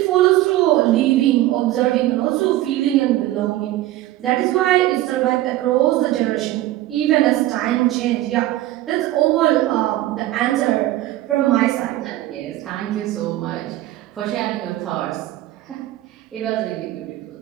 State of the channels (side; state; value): left; quieter; 15.5 dB